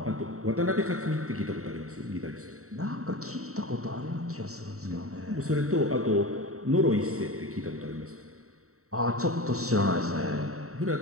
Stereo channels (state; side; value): late; left; 0.64 ms